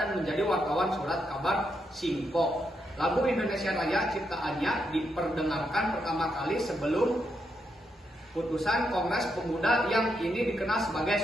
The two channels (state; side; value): normal; both; correlation 0.81